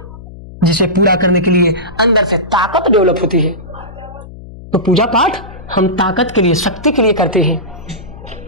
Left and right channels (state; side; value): noise; left; hum, 16 dB below the sound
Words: जिसे पूरा करने के लिए अंदर से ताकत डेवलप होती है। तो पूजा पाठ हम ताकत के लिए, शक्ति के लिए करते हैं।